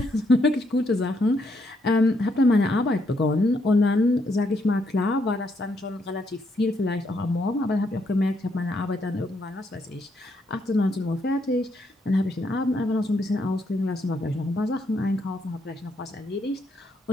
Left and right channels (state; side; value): normal; both; correlation 0.75